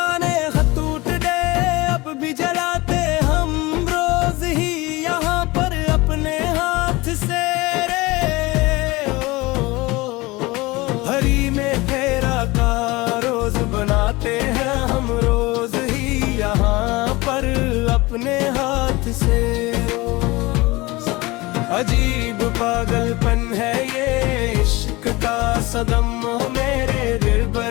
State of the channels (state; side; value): quieter; right; 22.0 dB